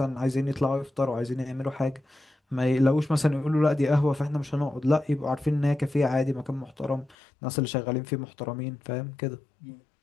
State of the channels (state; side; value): drops out; right; at 7.2 s